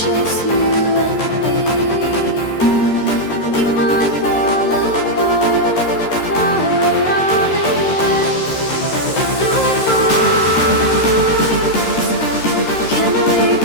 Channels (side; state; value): right; late; 13 ms